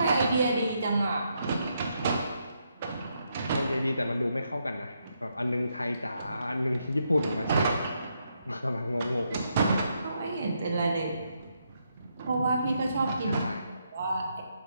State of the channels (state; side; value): inverted; both; correlation -0.79